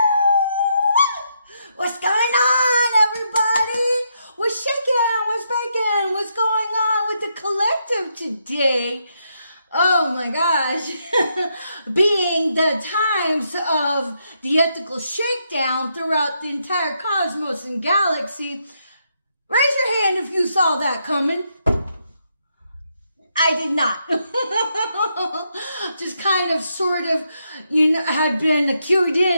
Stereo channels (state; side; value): inverted; both; correlation -0.79